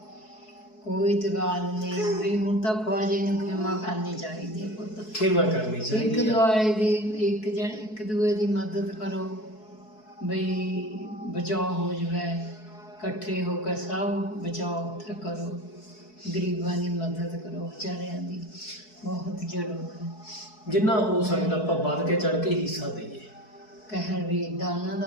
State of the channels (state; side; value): late; right; 4.6 ms